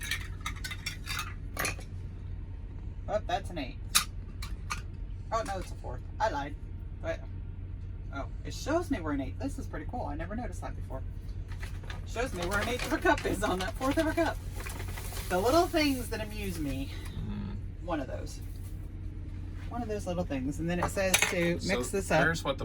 Oh, that's an 1/8. Oh, no, it's a 1/4. I lied. But, oh, it shows me where an 1/8. This is pretty cool. I never noticed that before. It shows me where an 1/8 of a cup is on that 1/4 of a cup. The little things that amuse me. One of those. One of those little things. And then it says to mix this up. There's what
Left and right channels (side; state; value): both; identical; correlation 1.00